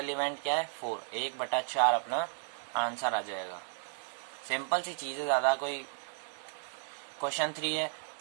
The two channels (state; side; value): silent; left; digital silence